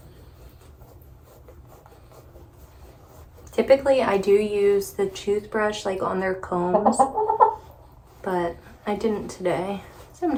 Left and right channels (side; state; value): both; identical; correlation 1.00